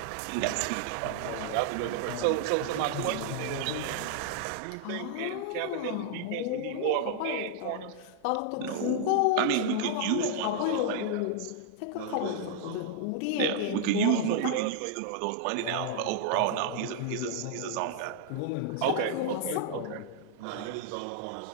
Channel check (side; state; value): both; different; correlation -0.01